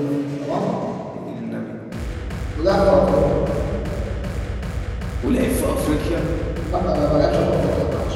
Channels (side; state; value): both; identical; correlation 1.00